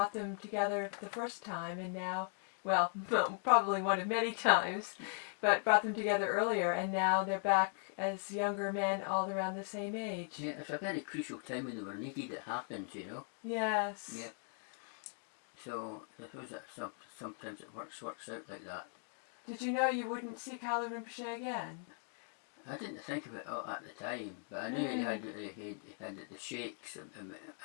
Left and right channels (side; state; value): right; silent; 52 dB below the other